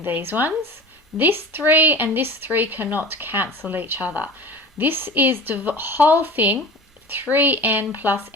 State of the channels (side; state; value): both; normal; correlation 0.37